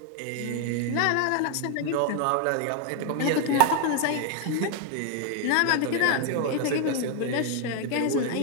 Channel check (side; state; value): both; different; correlation 0.01